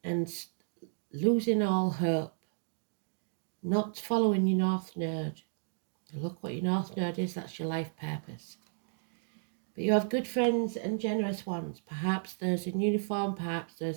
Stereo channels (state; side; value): silent; left; digital silence